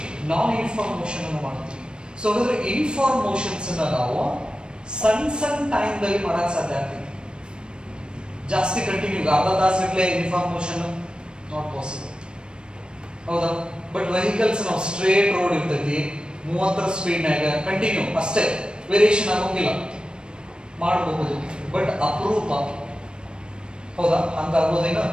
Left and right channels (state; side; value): late; left; 0.052 ms